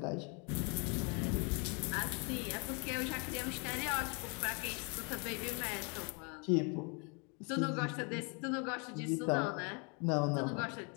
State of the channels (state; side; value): quieter; right; 34.3 dB